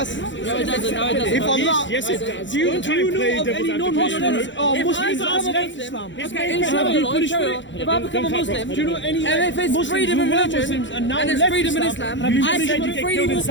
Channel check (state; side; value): late; right; 0.54 ms